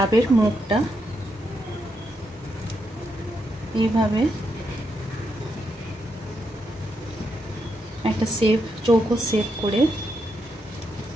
মুখটা এইভাবে একটা চৌকো শেপ করে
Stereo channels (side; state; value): both; normal; correlation 0.81